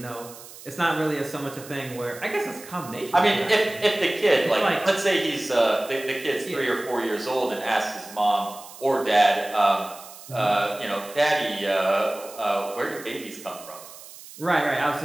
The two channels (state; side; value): noise; right; hiss, 17 dB below the sound